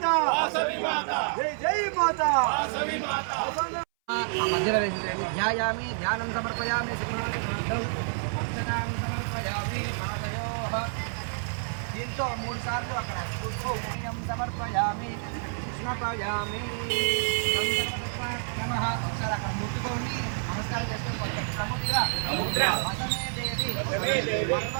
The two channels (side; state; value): left; silent; 59 dB below the other